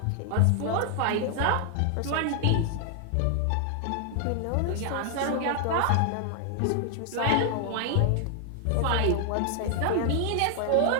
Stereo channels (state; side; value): different; both; correlation 0.00